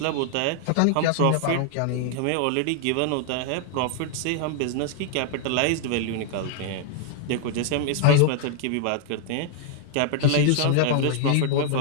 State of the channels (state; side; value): different; both; correlation 0.00